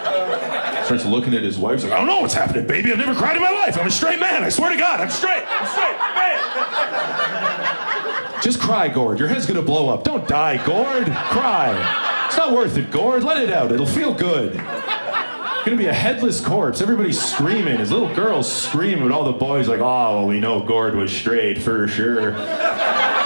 Starts looking at his wife. He's like, I don't know what's happening, baby. I've never cried in my life. I'm a straight man. I swear to God, I'm straight. Man. Just cry, Gord. Your head's gonna blow up. Don't die, Gord. Cry. It's not worth it, Gord. Let it out. It'll feel good. It's gonna be a headless corpse. Everybody's screaming. His little girl's screaming, and all the boys like, oh, well, we know Gord was straight for sure.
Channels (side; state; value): both; inverted; correlation -1.00